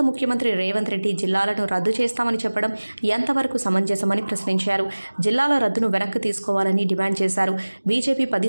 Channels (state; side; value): inverted; both; correlation -1.00